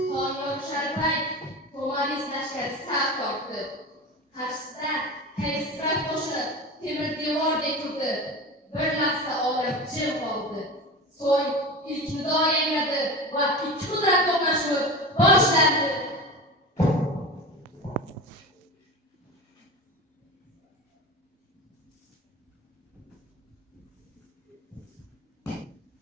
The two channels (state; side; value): normal; both; correlation 0.29